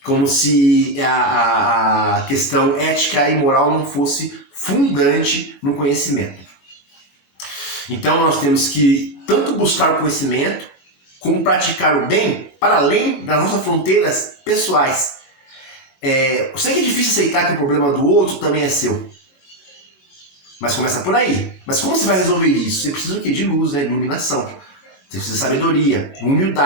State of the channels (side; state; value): right; late; 21 ms